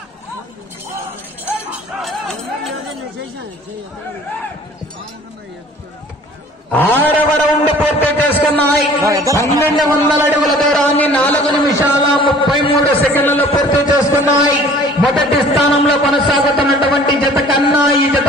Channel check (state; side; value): normal; both; correlation 0.50